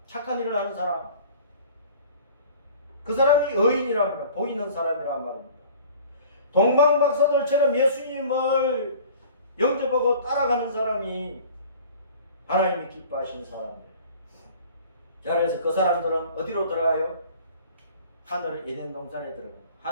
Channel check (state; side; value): inverted; both; correlation -0.47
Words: 착한 일을 하는 사람. 그 사람이 의인이랍니다. 복 있는 사람이란 말입니다. 동방박사들처럼 예수님을 영접하고 따라가는 사람이 하나님이 기뻐하시는 사람이에요. 자, 그래서 그 사람들은 어디로 들어가요? 하늘의 에덴 동산에 들어가요.